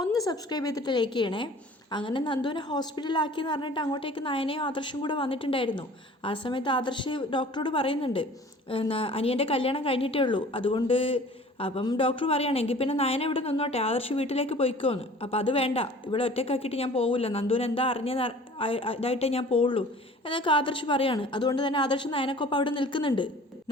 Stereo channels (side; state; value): both; normal; correlation 0.47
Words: ഒന്ന് സബ്സ്ക്രൈബ് ചെയ്തിട്ട് ലൈക്ക് ചെയ്യണേ. അങ്ങനെ നന്ദുവിനെ ഹോസ്പിറ്റലിലാക്കിയെന്ന് പറഞ്ഞിട്ട് അങ്ങോട്ടേക്ക് നയനയും ആദർശും കൂടെ വന്നിട്ടുണ്ടായിരുന്നു. ആ സമയത്ത് ആദർശ് ഡോക്ടറോട് പറയുന്നുണ്ട്, അനിയൻ്റെ കല്യാണം കഴിഞ്ഞിട്ടേ ഉള്ളൂ, അതുകൊണ്ട് അപ്പം ഡോക്ടർ പറയുകയാണെങ്കിൽ പിന്നെ നയന ഇവിടെ നിന്നോട്ടെ, ആദർശ് വീട്ടിലേക്ക് പോയിക്കോന്ന്. അപ്പം അത് വേണ്ട, ഇവിടെ ഒറ്റക്കാക്കിയിട്ട് ഞാൻ പോവില്ല, നന്ദുവിന് എന്താ അറിഞ്ഞത് ഇതായിട്ടേ ഞാൻ പോവുള്ളൂ എന്നൊക്കെ ആദർശ് പറയാണ്. അതുകൊണ്ട് തന്നെ ആദർശ് നയനക്കൊപ്പം അവിടെ നിൽക്കുന്നുണ്ട്.